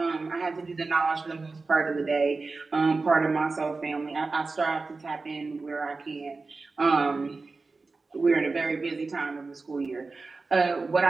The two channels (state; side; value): quieter; left; 3.9 dB